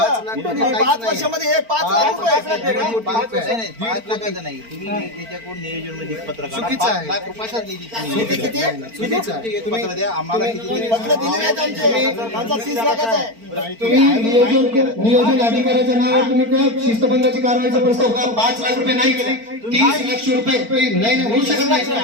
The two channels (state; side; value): late; left; 4.4 ms